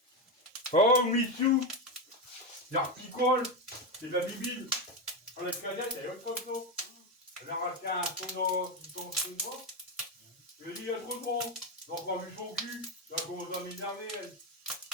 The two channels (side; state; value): both; normal; correlation 0.11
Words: Oh, Mitsou. Il y a un picole. C'est de la bibine. Dans la cadette, il y a autre chose. Elle a racheté un son chinois. Je lui ai dit, il y a trop de monde. Donc, on a vu son cul. Elle a commencé à m'énerver, elle.